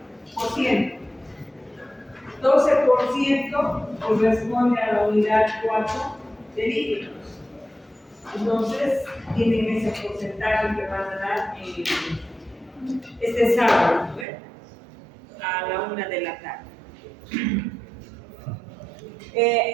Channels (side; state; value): left; drops out; at 14.2 s